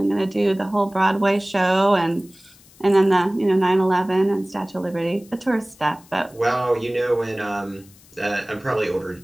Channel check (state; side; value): noise; left; hiss, 26 dB below the sound